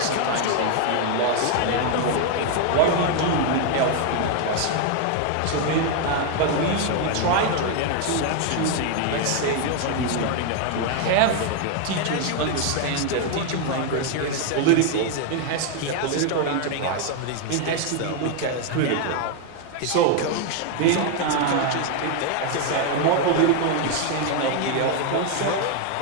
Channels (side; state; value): both; different; correlation 0.00